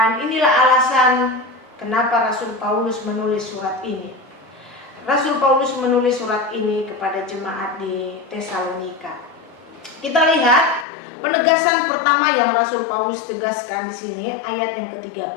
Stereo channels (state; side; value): drops out; right; at 10.9 s